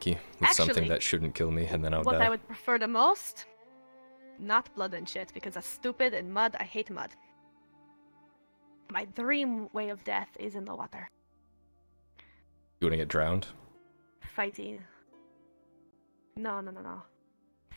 with something Actually, that shouldn't kill me, and then I'll What die. I would prefer the most? Not blood and shit, because that's stupid, and mud, I hate mud. My dream way of death is in the water. You wanna get drowned? Fighting. No.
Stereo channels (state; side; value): inverted; both; correlation -1.00